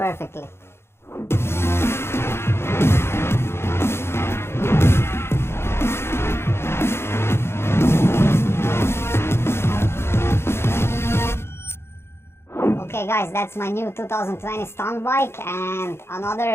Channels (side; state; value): right; late; 0.12 ms